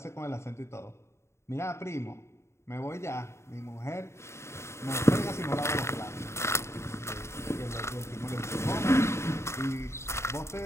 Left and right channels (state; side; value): late; right; 0.13 ms